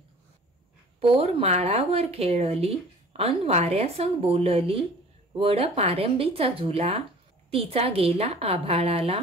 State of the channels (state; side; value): normal; both; correlation 0.47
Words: पोर माळावर खेळली अन वाऱ्यासंग बोलली, वड पारंबीचा झुला तिचा गेला आभाळाला।